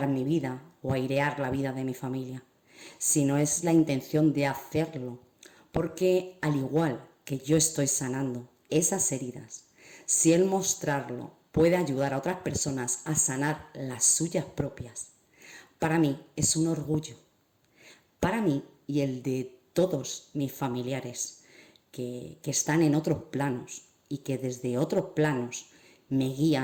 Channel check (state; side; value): identical; both; correlation 1.00